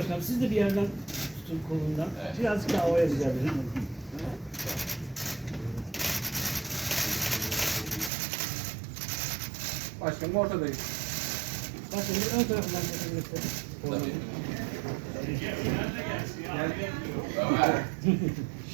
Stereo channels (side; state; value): left; drops out; at 8.1 s